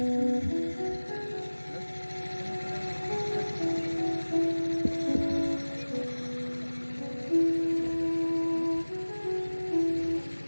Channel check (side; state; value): both; inverted; correlation -1.00